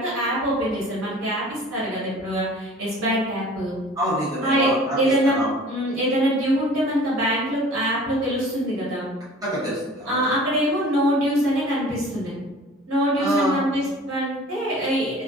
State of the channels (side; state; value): both; normal; correlation 0.46